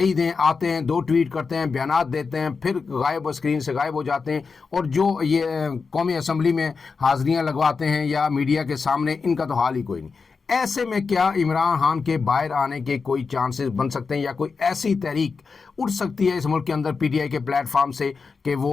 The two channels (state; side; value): quieter; right; 4.9 dB